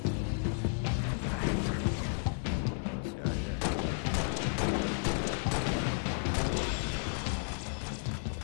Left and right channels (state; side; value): silent; right; digital silence